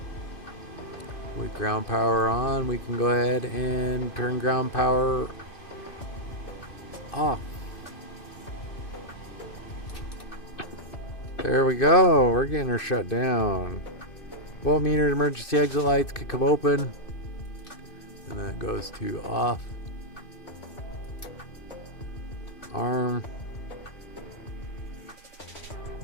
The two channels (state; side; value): late; right; 2.5 ms